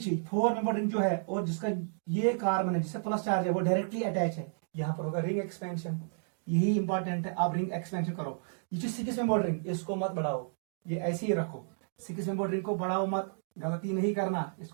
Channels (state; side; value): silent; left; digital silence